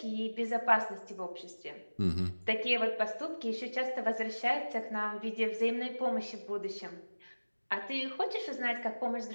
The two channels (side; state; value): both; inverted; correlation -1.00